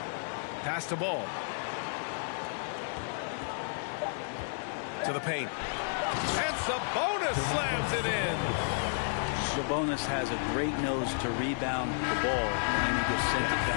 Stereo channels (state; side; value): silent; right; digital silence